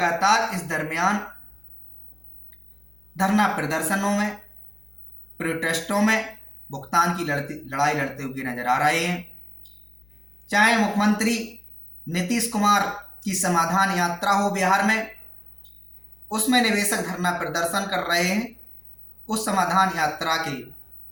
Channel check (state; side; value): noise; left; hum, 28 dB below the sound